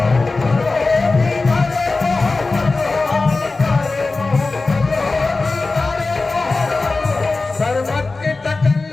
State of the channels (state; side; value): quieter; right; 3.6 dB